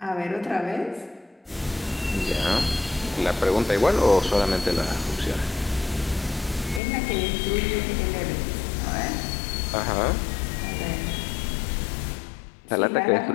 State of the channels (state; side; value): drops out; right; at 6.8 s